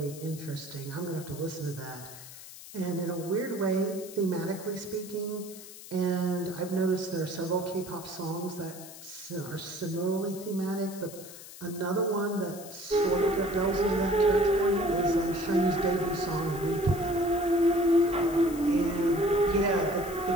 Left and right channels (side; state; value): left; noise; hiss, 15 dB below the sound